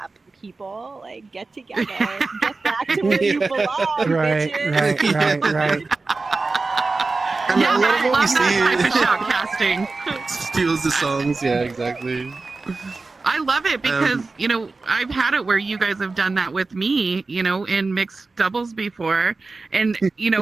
People, like, get together, get back to where you belong, bitches. Right. And Yeah, a lot I of what we love that see type of shoutcasting. steals the songs. Yeah, exactly. I love it because, you know, I've had it where you guys have done that with me, you know, in mixed doubles before. And, you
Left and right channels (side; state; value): left; quieter; 3.8 dB